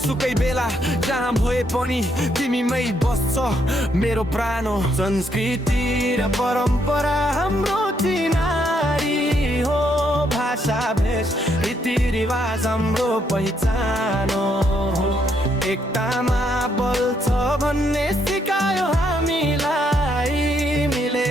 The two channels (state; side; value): normal; both; correlation 0.74